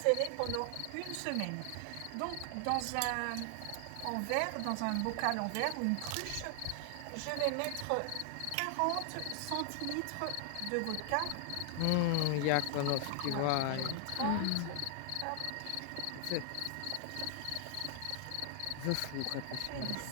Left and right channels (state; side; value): different; both; correlation 0.00